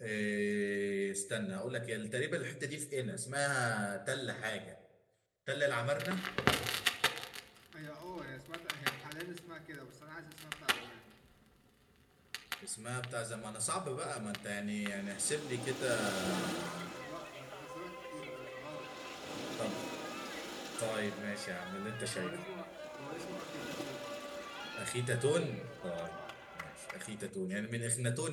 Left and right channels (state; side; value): identical; both; correlation 1.00